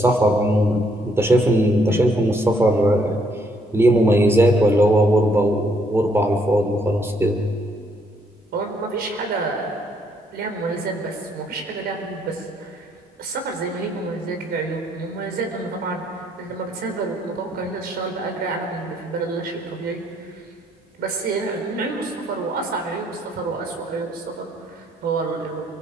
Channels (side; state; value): both; normal; correlation 0.70